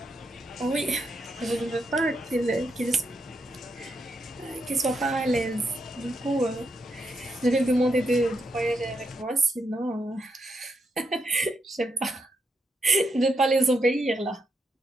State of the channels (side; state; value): both; normal; correlation 0.81